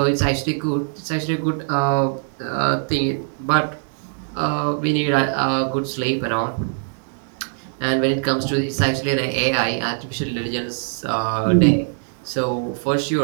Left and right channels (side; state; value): left; silent; 60 dB below the other